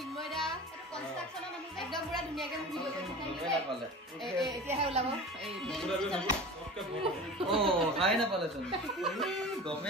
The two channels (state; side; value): normal; both; correlation 0.35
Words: এটা কনস্ট্ৰাকচনৰ মানুহ একদম পুৰা ধুনিয়াকে ভিডিও কৰি থাকে এতিয়া হে ওলাব পঢ়াই নাপালেচোন